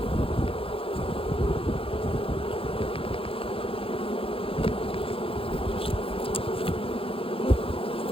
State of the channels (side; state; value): right; late; 0.27 ms